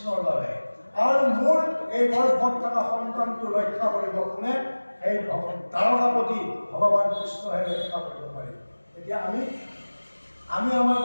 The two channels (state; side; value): inverted; both; correlation -1.00